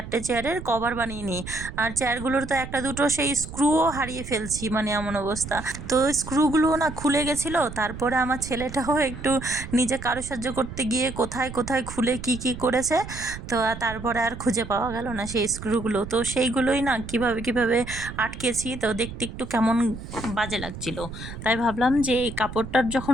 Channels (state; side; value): noise; right; rumble, 11 dB below the sound